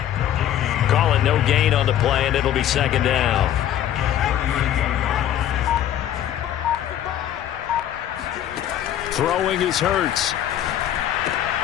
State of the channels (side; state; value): right; quieter; 11.2 dB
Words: Call it no gain on the play, and it'll be second down. Throwing is Hurts.